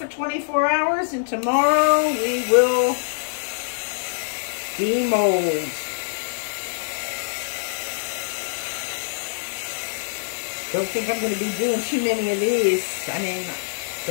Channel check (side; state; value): right; silent; digital silence